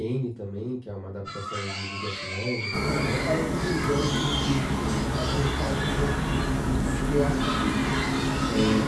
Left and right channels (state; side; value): identical; both; correlation 1.00